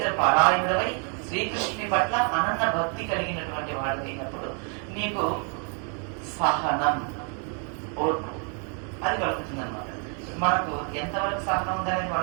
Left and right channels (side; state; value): left; quieter; 39.7 dB